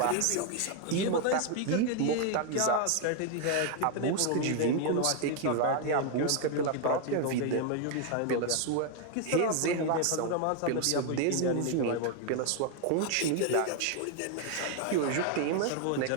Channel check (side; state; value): both; different; correlation 0.00